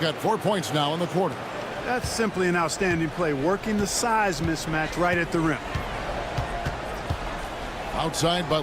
4 points now in the quarter. That's simply an outstanding play, working the size mismatch right at the rim. Outside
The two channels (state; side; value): identical; both; correlation 1.00